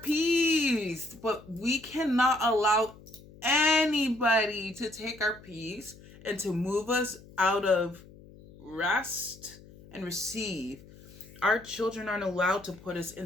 but we cannot allow anybody to take our peace and to move us out of rest and receive. Our children aren't allowed to put us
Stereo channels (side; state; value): left; noise; hum, 21 dB below the sound